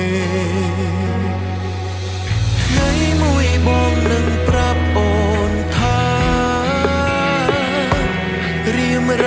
ថ្ងៃមួយបងនឹងប្រាប់អូនថារៀមរ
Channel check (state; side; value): identical; both; correlation 1.00